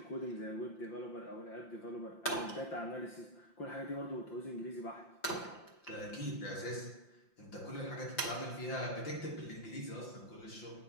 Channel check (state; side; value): late; right; 5.8 ms